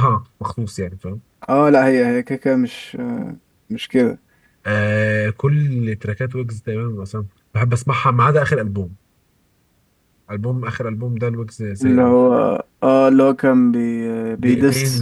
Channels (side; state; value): both; identical; correlation 1.00